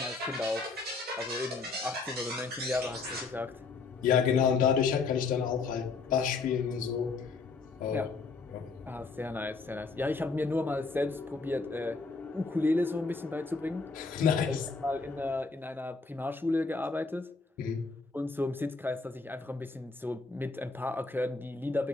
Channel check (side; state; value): right; quieter; 4.3 dB